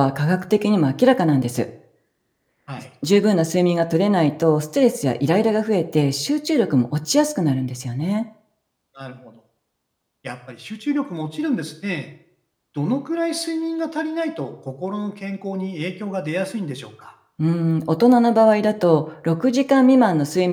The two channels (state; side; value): identical; both; correlation 1.00